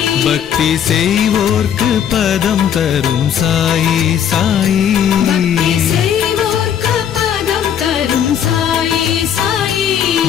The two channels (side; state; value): right; quieter; 9.0 dB